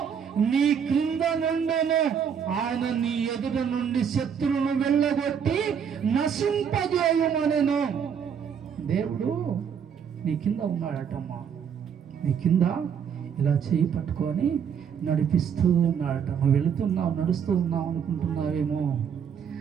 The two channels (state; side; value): quieter; left; 7.5 dB